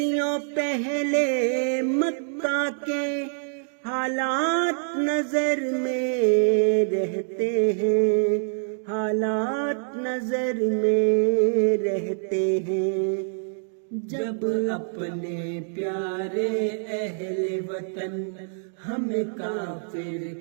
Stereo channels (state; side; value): silent; left; digital silence